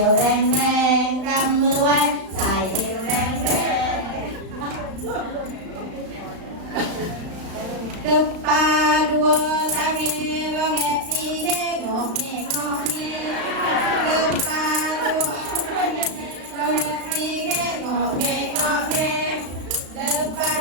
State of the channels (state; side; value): late; left; 35 ms